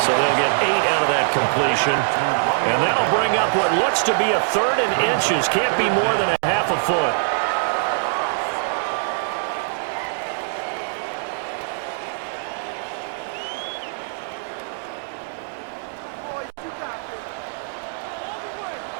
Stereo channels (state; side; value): silent; left; digital silence